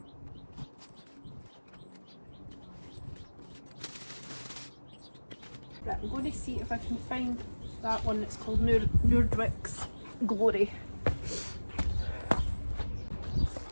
Right, I'm going to see if I can find that one that's called Nordwick's Glory.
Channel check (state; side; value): inverted; both; correlation -1.00